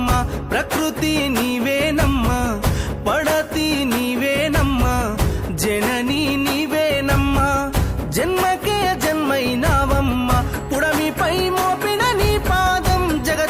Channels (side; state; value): both; identical; correlation 1.00